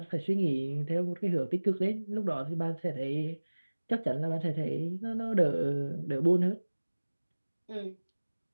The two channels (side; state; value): both; inverted; correlation -1.00